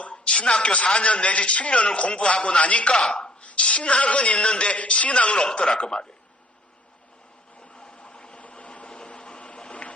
신학교 4년 내지 7년을 공부하고 나니까 신학은 있는데 신앙은 없더라 그 말이에요.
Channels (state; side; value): normal; both; correlation 0.59